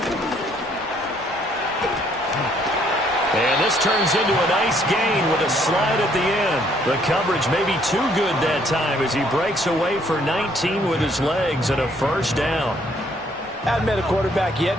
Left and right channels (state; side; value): normal; both; correlation 0.66